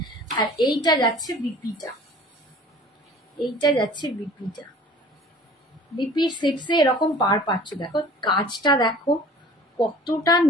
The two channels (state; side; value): normal; both; correlation 0.47